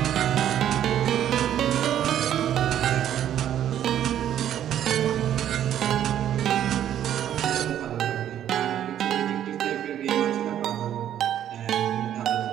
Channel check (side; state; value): left; quieter; 10.7 dB